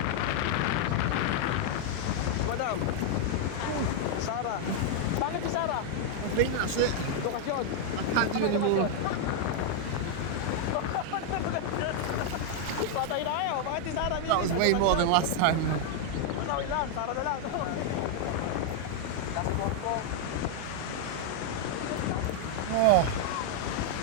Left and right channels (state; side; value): different; both; correlation 0.00